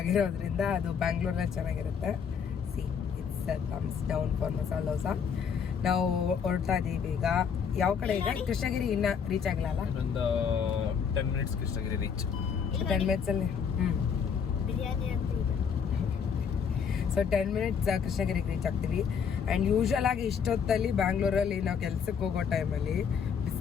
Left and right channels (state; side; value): quieter; right; 6.8 dB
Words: ಅದು ಬ್ಯಾಂಗ್ಳೂರಲ್ಲಿ ಚೆನ್ನಾಗಿರುತ್ತೆ. C it's thumbs down for masala dosa. ನಾವು ಹೊರಡ್ತಾ ಇದ್ದೀವಿ ಈಗ. ಯಾವ ಕಡೆ ಈಗ? ಕೃಷ್ಣಗಿರಿ ಇನ್ನೂ ರೀಚ್ ಆಗಿಲ್ಲ ಅಲ್ಲ? ಒಂದು 10 minutes Krishnagiri reach. 10 minutes biryani ಅಂತ ಇದೆ. ಸೊ 10 minutes ಕೃಷ್ಣಗಿರಿಗೆ ರೀಚ್ ಆಗ್ತೀವಿ. ಆ್ಯಂಡ್ ಯೂಶ್ವಲ್ ಆಗಿ ಇಷ್ಟೊತ್ತಲ್ಲಿ ಬ್ಯಾಂಗ್ಳೂರಲ್ಲಿ ನಾವು ಕೆಲ್ಸಕ್ಕೆ ಹೋಗೋ ಟೈಮಲ್ಲಿ